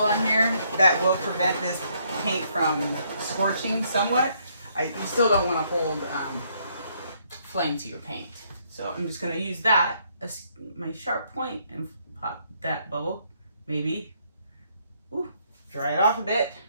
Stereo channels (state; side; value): inverted; both; correlation -0.70